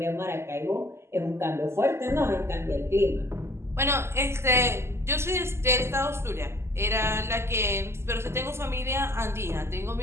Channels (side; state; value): left; late; 0.12 ms